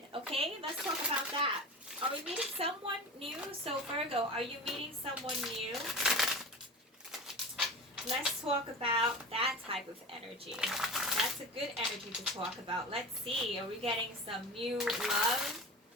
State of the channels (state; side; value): normal; both; correlation 0.31